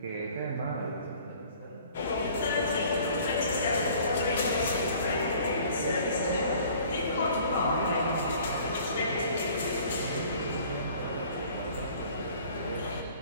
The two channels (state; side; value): inverted; both; correlation -0.52